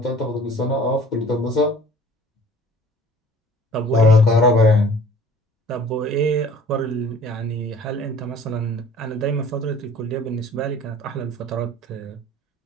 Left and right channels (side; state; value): both; normal; correlation 0.49